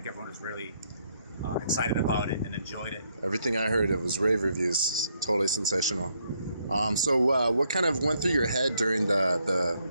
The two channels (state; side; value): inverted; both; correlation -0.73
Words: everyone was really excited about it and enjoyed it. Everything I heard, it was rave reviews. Totally sensational. So what kind of went through your head during